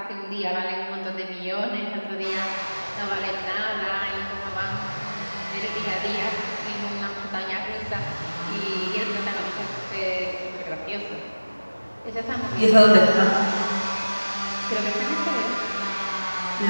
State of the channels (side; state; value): both; inverted; correlation -1.00